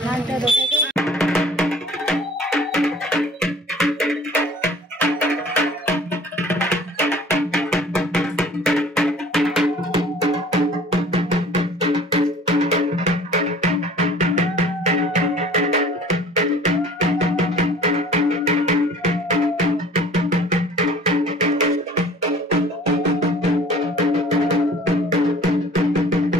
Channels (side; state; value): both; normal; correlation 0.48